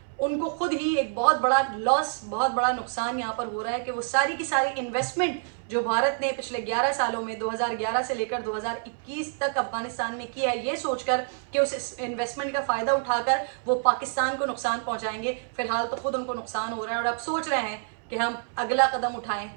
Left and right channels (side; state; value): left; silent; 60 dB below the other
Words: उनको खुद ही एक बहुत बड़ा लॉस, बहुत बड़ा नुकसान यहाँ पर हो रहा है कि वो सारी की सारी इन्वेस्टमेंट जो भारत ने पिछले 11 सालों में 2011 से लेकर 2021 तक अफगानिस्तान में किया है, ये सोचकर कि उस इन्वेस्टमेंट का फ़ायदा उठाकर वो पाकिस्तान को नुकसान पहुंचाएंगे, फिलहाल तो खुद उनको नुकसान हो रहा है और अब सोच रहे हैं कि हम अगला कदम उठाएं